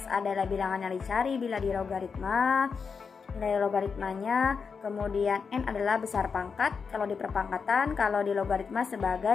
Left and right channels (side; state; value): right; quieter; 5.6 dB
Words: adalah bilangan yang dicari bila di logaritma. Nilai logaritmanya, kemudian N adalah besar pangkat kalau di perpangkatan, kalau di logaritma